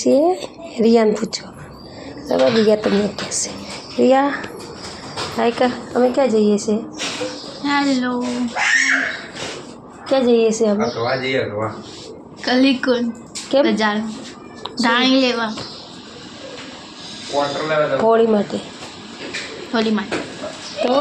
रिया ने पूछो। चलो रिया તમને કહેશે। रिया हाय कर, अमे क्या जईए छे? हेलो क्या जईए छे अमे? अगवा जी अगवा कलिकुन કેમ? બજાર ધાણી લેવા क्वार्टर लेवा दो હોળી માટે। હોલી માટે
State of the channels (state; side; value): identical; both; correlation 1.00